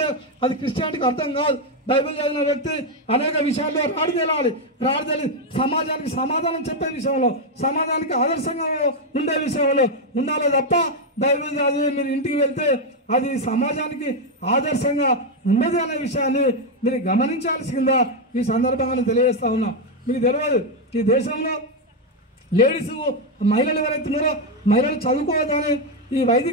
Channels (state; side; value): normal; both; correlation 0.04